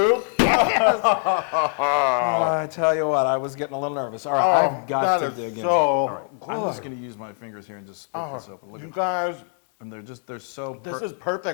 I tell you what, I was getting a little nervous. All right, I've got to dig in. So All right, I'm good. just going to use my fingers here and just split this open. Look You at guys, and they're so. this is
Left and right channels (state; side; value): silent; right; 56 dB below the other